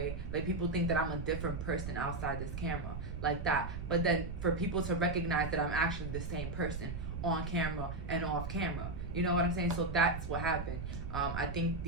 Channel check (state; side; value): noise; right; rumble, 5 dB below the sound